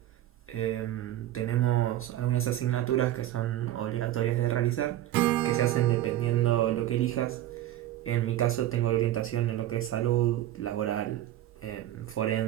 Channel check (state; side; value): quieter; left; 13.4 dB